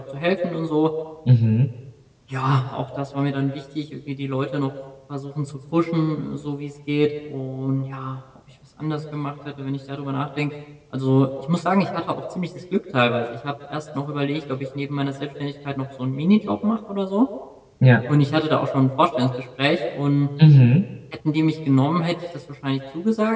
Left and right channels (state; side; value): identical; both; correlation 1.00